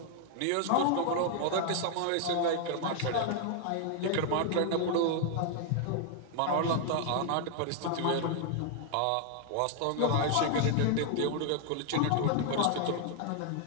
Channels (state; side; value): different; both; correlation 0.00